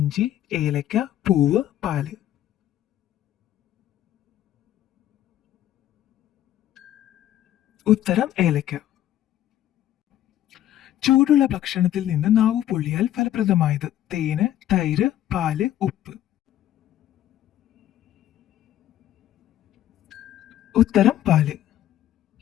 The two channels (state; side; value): quieter; right; 12.2 dB